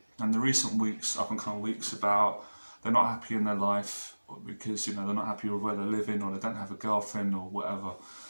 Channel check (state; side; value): inverted; both; correlation -1.00